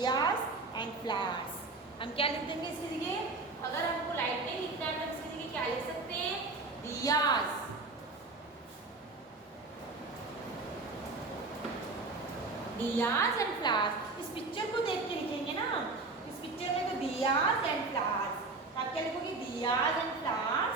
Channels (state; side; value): quieter; left; 3.6 dB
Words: and flowers. हम क्या लिख देंगे इसके जगह? अगर हमको लाइट नहीं लिखना है तो इसके जगह क्या लिख सकते हैं? दियास। Diyas and flowers. इस पिक्चर को देख के लिखेंगे ना। इस पिक्चर में तो दियास एंड फ्लावर्स। आप क्या लिखोगे? Diyas and